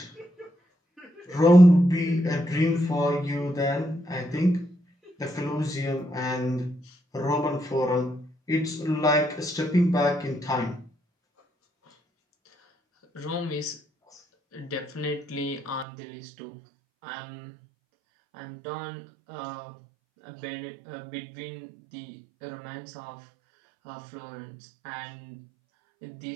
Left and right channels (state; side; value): drops out; left; at 15.9 s